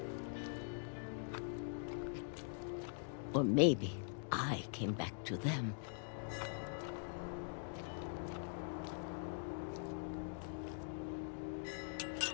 Or maybe I came back to them.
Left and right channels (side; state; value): right; silent; digital silence